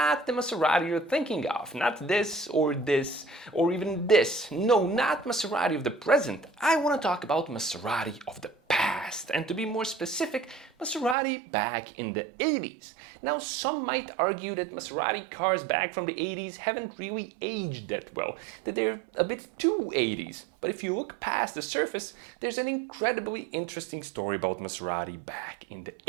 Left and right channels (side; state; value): left; drops out; at 11.2 s